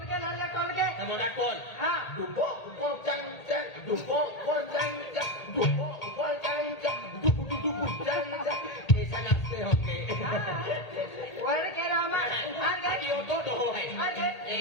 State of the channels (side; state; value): right; late; 1.8 ms